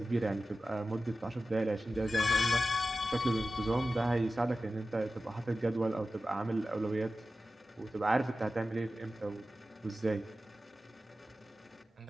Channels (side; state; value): both; normal; correlation 0.94